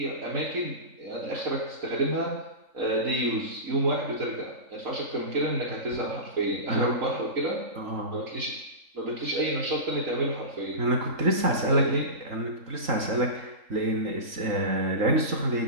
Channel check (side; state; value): left; late; 3.8 ms